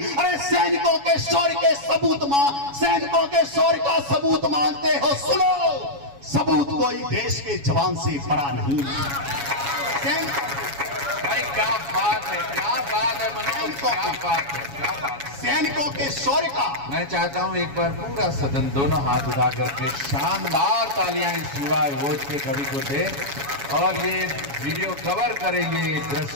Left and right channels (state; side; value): late; left; 7.2 ms